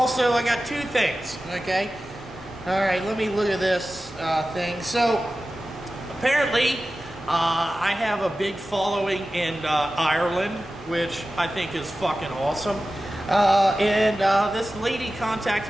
I got two things, okay? All right, let me look at this thing. So, apparently, I have a big following in Ireland, which I think is fucking awesome. This lady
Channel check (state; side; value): normal; both; correlation 0.95